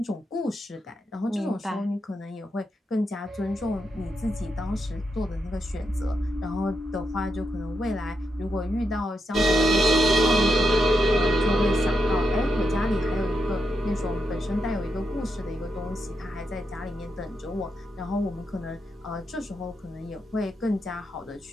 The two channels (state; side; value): normal; both; correlation 0.83